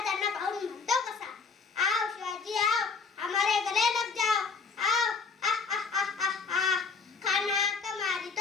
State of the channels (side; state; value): right; quieter; 4.9 dB